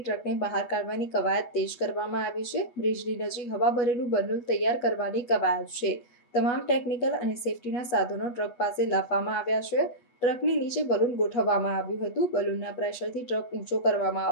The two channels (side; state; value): right; late; 8.1 ms